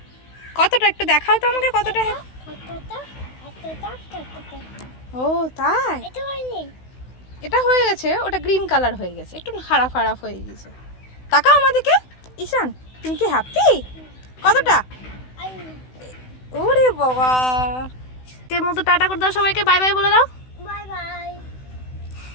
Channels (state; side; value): late; right; 16 ms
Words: কতটা একটু দেখাও তো আমাকে, কতটা? ও তাই, এটা হয়ে গেছে, ওটা গ্রিন কালার হয়ে গেছে, একটু খারাপ খারাপ হয়ে গেছে। তাকাও আমাদেরকে। ঈশান তুমি কি হ্যাপি? কতটা? ওরে বাবা, এর মতো টাটা করে দাও সবাইকে, বাই বাই বলে দাও।